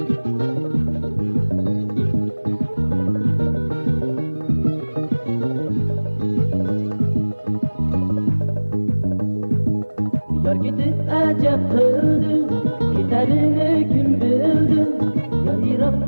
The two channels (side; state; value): both; inverted; correlation -1.00